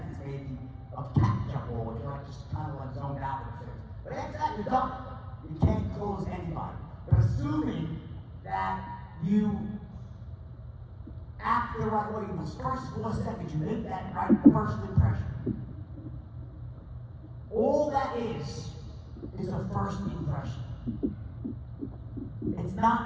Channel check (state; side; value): identical; both; correlation 1.00